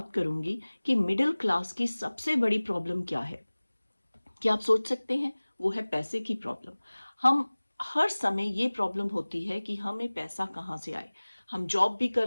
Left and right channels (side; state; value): both; inverted; correlation -1.00